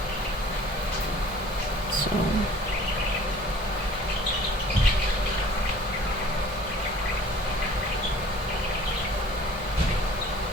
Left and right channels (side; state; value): both; normal; correlation 0.49